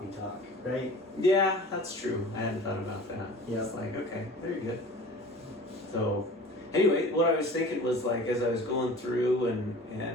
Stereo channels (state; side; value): normal; both; correlation 0.42